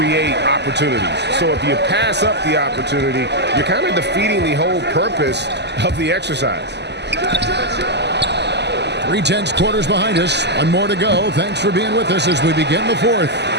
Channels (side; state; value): left; late; 0.50 ms